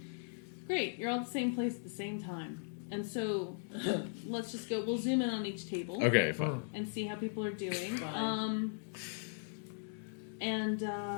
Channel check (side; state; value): right; silent; digital silence